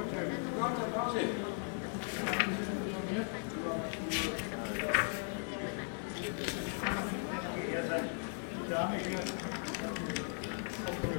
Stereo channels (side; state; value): right; silent; 53 dB below the other